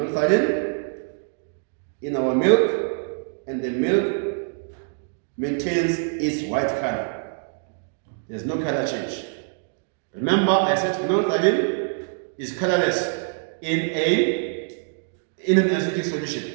in our milk, and the milk maintains its white color. There's no color change. Remember, I said phenolphthalein is colorless in an acidic solution.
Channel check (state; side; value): silent; left; digital silence